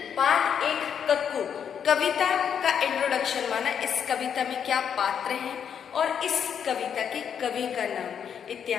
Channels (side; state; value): right; quieter; 7.9 dB